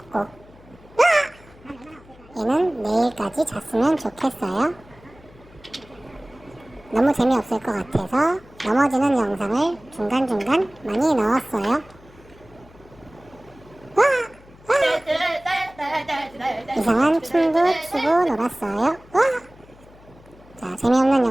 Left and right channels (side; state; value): left; noise; hum, 24 dB below the sound